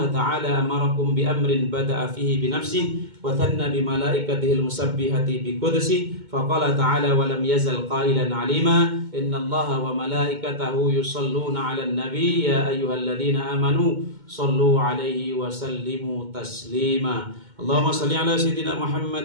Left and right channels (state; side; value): late; left; 2.2 ms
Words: ta'ala amarakum bi amrin bada'a fihi bi nafsihi wa thanna bi malaikatihi al-musabbihati bi qudsi faqala ta'ala wa lam yazal qailan 'alima inna Allah wa malaikatahu yusalluna 'alan nabi ya ayyuhalladhina amanu sallu 'alaihi wa sallimu taslima. Allahumma salli ala sayyidina